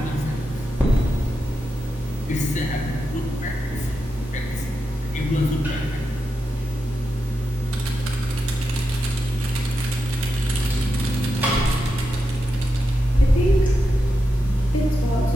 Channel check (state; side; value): normal; both; correlation 0.88